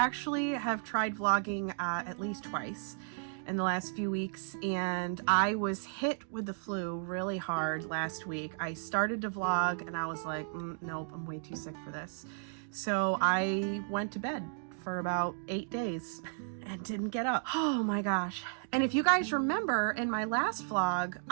have tried vlogging at least twice in the last few weeks, and I was hit with the flu really hard last week. I started to vlog and I was like, nope, I'm way too sick for this. So I went to bed for about 8 days and didn't get up. Oh my gosh. And if you guys remember, in my last vlog,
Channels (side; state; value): left; silent; digital silence